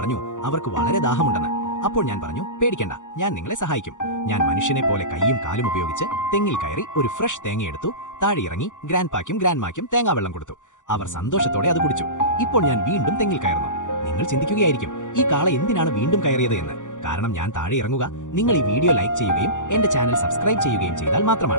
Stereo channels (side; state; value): right; late; 0.86 ms